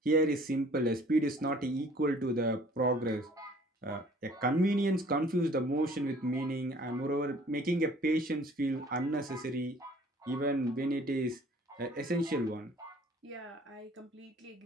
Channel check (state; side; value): normal; both; correlation 0.54